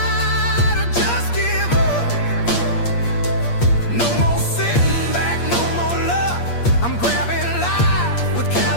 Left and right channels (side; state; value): right; late; 8.5 ms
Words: or just give up. No more sitting back, no more luck. I'm grabbing life with